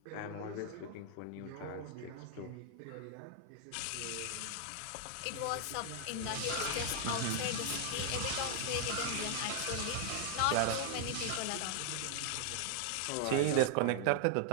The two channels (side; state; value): both; different; correlation 0.00